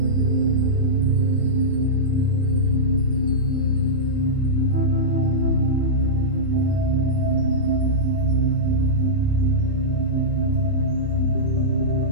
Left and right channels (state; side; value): late; left; 9.6 ms